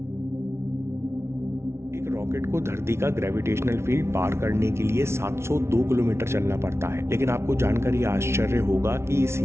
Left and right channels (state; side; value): late; left; 0.13 ms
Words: रॉकेट को धरती का ग्रेविटेशनल फील्ड पार करने के लिए 702 किलोमीटर चलना पड़ता है, लेकिन आपको जानकर यह आश्चर्य होगा कि इस